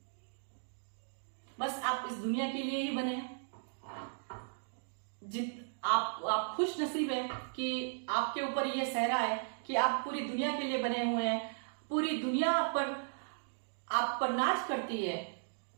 बस आप इस दुनिया के लिए ही बने हैं। आप खुश नसीब है कि आपके ऊपर यह सहरा है कि आप पूरी दुनिया के लिए बने हुए हैं। पूरी दुनिया आप पर नाच करती है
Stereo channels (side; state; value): left; silent; digital silence